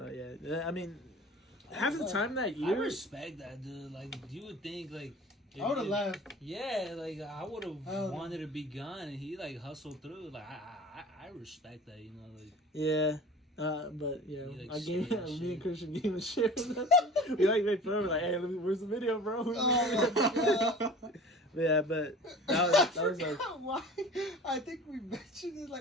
But yeah, I mean, half the time that I year, respect that, dude. Like, you would think, like, I would have left. Yeah, like I would have Oh. wanted to be gone, and he like hustled through. Like I respect that, you know. Like yeah. But yeah, He, like, I gave straight up me shit. and Christian gave him a shit. We like made fun of him, like, hey, where's the video, bro? Oh, my God. Yeah, but that was like, forgot why. I think we mentioned it.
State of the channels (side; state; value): both; normal; correlation 0.41